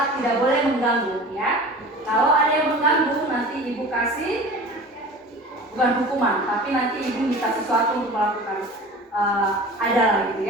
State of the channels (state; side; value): normal; both; correlation 0.39